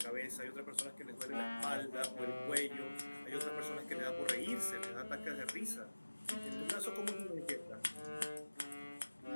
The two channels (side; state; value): both; inverted; correlation -1.00